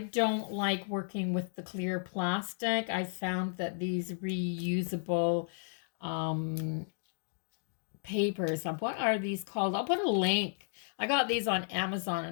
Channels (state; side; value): silent; right; digital silence